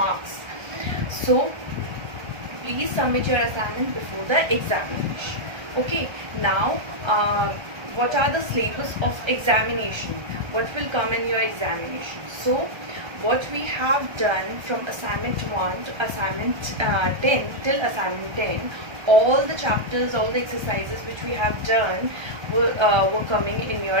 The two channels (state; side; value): late; left; 1.3 ms